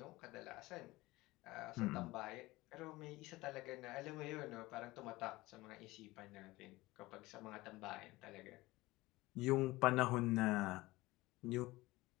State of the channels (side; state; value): right; quieter; 20.0 dB